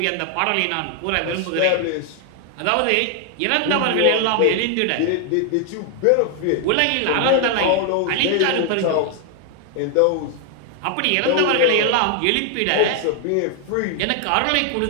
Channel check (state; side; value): different; both; correlation 0.00